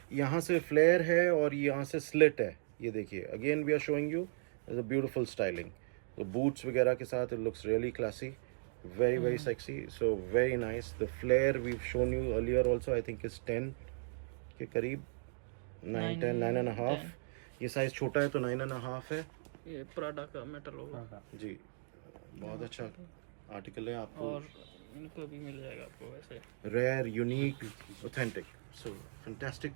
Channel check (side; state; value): left; silent; digital silence